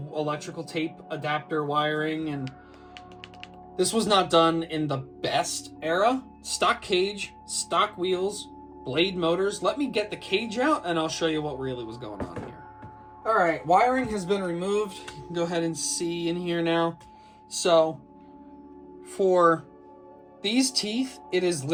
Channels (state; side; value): identical; both; correlation 1.00